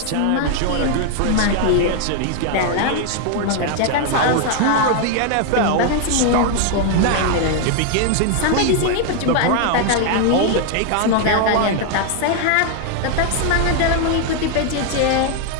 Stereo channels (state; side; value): different; both; correlation 0.00